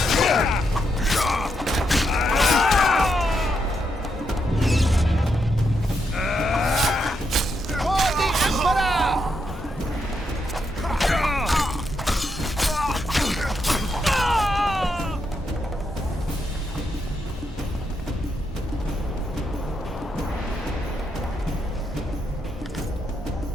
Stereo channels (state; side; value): normal; both; correlation 0.81